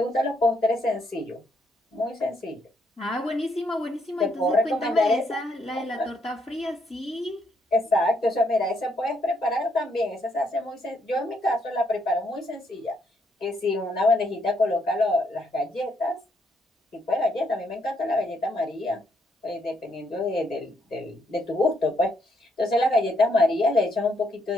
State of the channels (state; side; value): normal; both; correlation 0.74